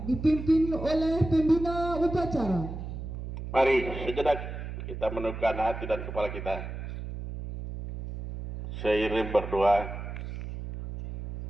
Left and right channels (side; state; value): right; noise; hum, 7 dB below the sound